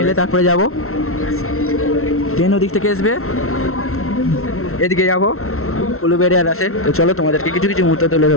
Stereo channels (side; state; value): right; late; 0.63 ms